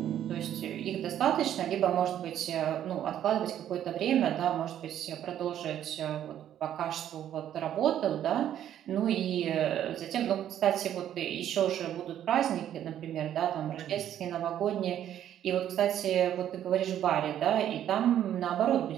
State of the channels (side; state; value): left; quieter; 10.8 dB